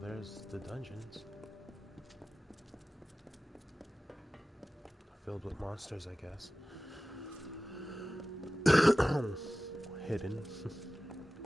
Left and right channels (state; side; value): normal; both; correlation 0.96